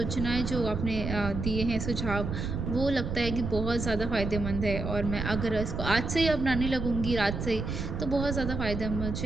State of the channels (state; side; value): noise; right; rumble, 4 dB below the sound